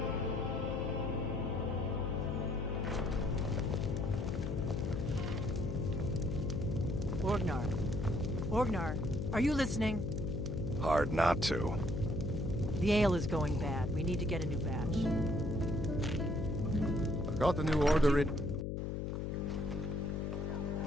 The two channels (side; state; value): left; noise; hum, 2 dB below the sound